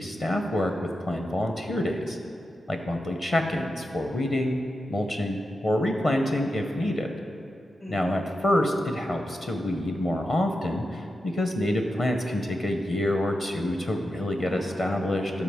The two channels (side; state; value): both; normal; correlation 0.89